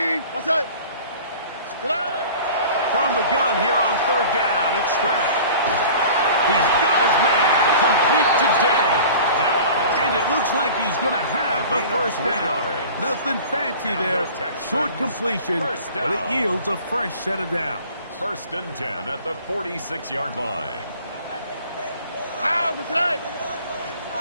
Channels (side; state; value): both; inverted; correlation -0.43